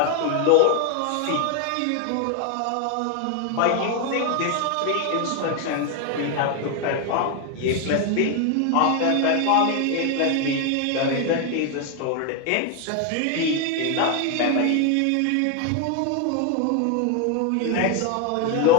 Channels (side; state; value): both; different; correlation 0.01